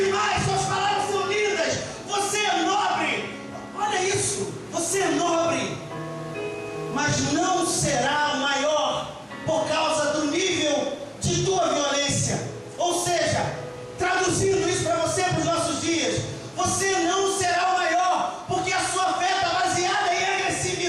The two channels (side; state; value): both; identical; correlation 1.00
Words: suas palavras são lindas, você é nobre. Olha isso, você é nobre, mas não será maior por causa do nível de tua violência. Ou seja, traduzindo isso para você, para os nossos dias, você não será o maior, porque a sua fé está baseada em